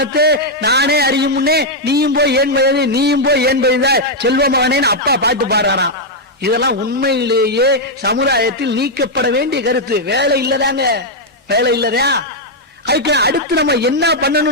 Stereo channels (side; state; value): both; normal; correlation -0.02